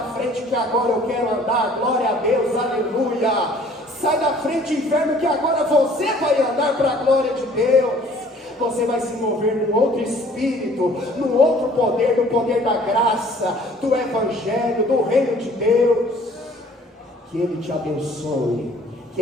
frente que agora eu quero andar, glória a Deus, aleluia. Sai da frente, inferno, que agora você vai andar para a glória de Deus. Você vai se mover num outro espírito, num outro poder, no poder da graça, do evangelho, do reino de Deus. Que Ele te abençoe, que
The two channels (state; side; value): normal; both; correlation 0.54